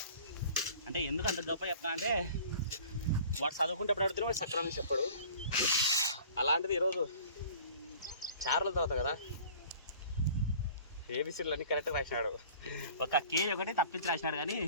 అంటే ఎందుకు అంత గొప్ప చెప్తా అంటే వాడు చదువుకుంటేప్పుడు అడుగుతున్నా వాడు సక్రమంగా చెప్పాడు. అలాంటిది ఈరోజు చారుల తర్వాత కదా ఏబిసిడీలు అన్నీ కరెక్ట్గా రాసినాడు. ఒక కే ఒకటి తప్పించి రాసినాడు కానీ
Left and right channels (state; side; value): inverted; both; correlation -0.47